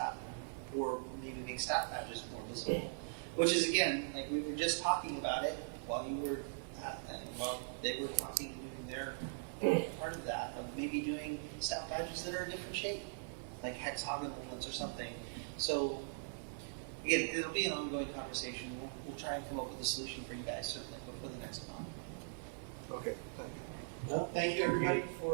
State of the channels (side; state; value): left; silent; 51 dB below the other